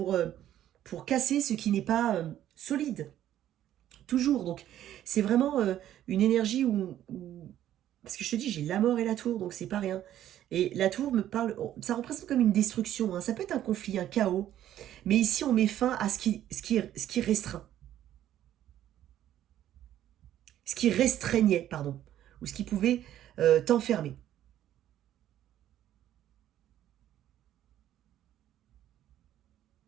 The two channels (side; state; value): left; quieter; 12.0 dB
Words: casser ce qui n'est pas solide. Toujours. Donc, c'est vraiment une énergie où... Parce que je te dis, j'ai la mort et la tour, donc c'est pas rien. Et la tour me parle... Ça représente comme une destruction. Hein. Ça peut être un conflit, un chaos. Mais ici, on met fin à ce qui restreint. Ce qui restreignait, pardon. Ou ce qui pouvait t'enfermer.